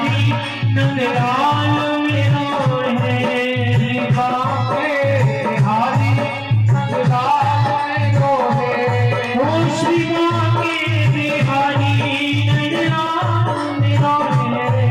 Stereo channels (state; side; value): identical; both; correlation 1.00